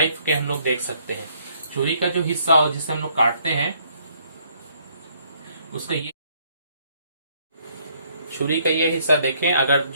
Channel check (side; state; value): both; inverted; correlation -0.67